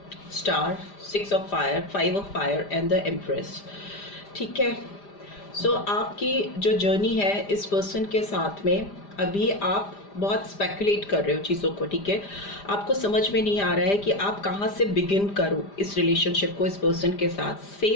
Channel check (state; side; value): late; right; 5.0 ms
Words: star, 6 of fire, 5 of fire and the empress, ठीक है। so आपकी जो जर्नी है इस पर्सन के साथ में, अभी आप बहुत स्पेकुलेट कर रहे हो चीज़ों को, ठीक है। आपको समझ में नहीं आ रहा है कि आप कहाँ से बिगिन करो इस रिलेशनशिप को इस पर्सन के साथ।